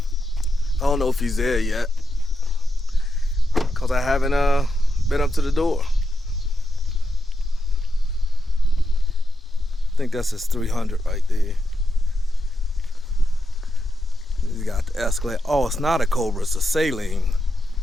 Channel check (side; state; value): both; normal; correlation 0.86